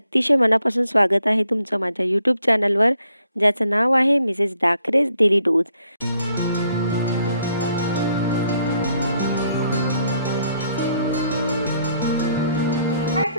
मनापासून स्वागत आहे तुमचं माझ्या यूट्यूब चॅनलवर, ज्याचं नाव आहे मिसेस डाकरेज डेली डोज। हाय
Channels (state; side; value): inverted; both; correlation -0.72